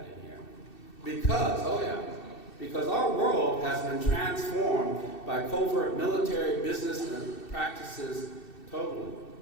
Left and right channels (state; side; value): late; right; 2.7 ms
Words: in here? Because our world has been transformed by covert military business and practices totally.